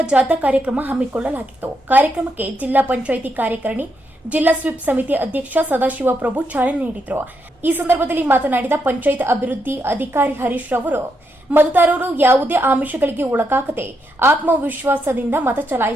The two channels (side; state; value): both; normal; correlation 0.80